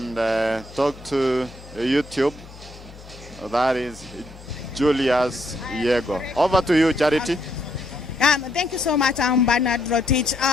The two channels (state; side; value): noise; left; hum, 18 dB below the sound